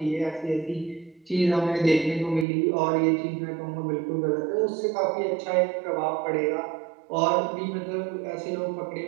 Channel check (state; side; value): drops out; left; at 2.5 s